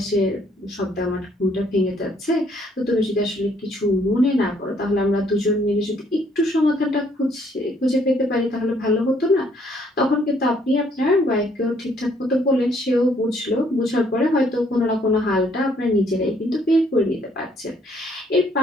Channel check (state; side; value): normal; both; correlation 0.66